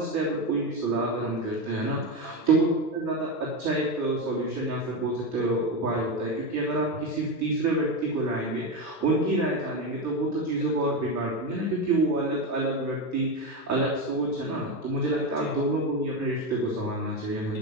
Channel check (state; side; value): normal; both; correlation 0.15